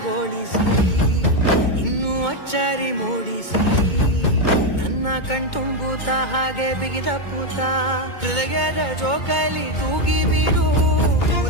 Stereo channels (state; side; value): late; right; 2.2 ms